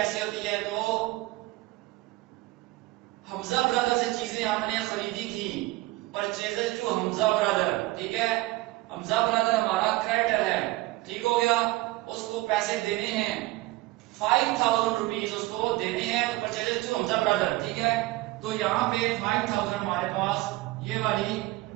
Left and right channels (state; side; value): quieter; left; 19.4 dB